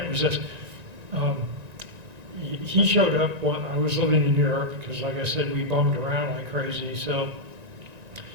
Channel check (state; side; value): late; left; 1.9 ms